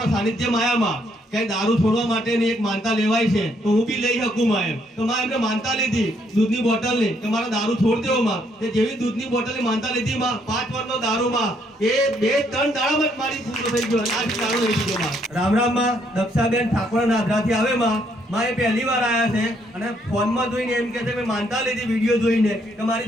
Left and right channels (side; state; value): both; normal; correlation 0.71